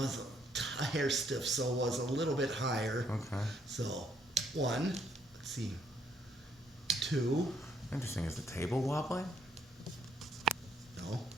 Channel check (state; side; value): normal; both; correlation 0.70